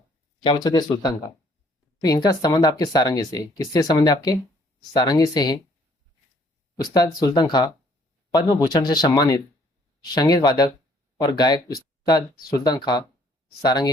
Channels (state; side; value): normal; both; correlation 0.62